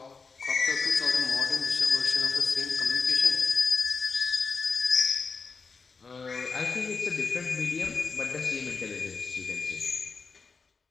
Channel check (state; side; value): quieter; right; 4.8 dB